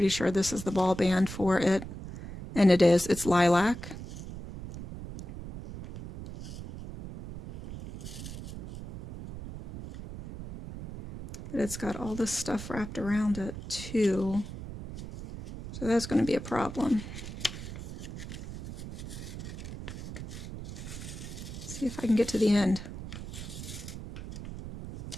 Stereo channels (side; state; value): right; noise; rumble, 10 dB below the sound